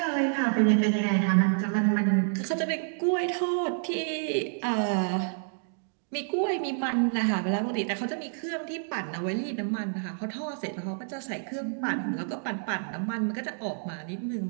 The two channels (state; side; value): silent; left; digital silence